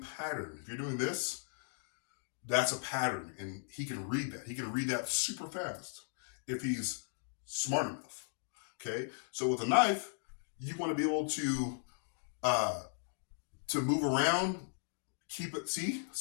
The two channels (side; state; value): right; silent; digital silence